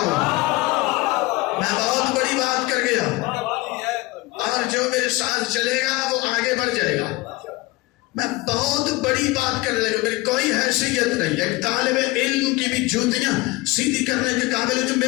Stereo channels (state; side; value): quieter; right; 21.1 dB